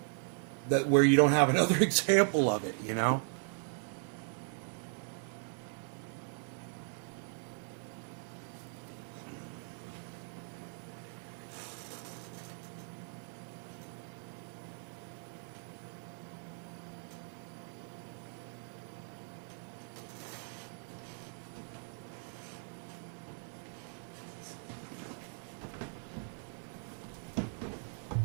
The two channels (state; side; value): silent; left; 52 dB below the other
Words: where you don't have another example of it, you know.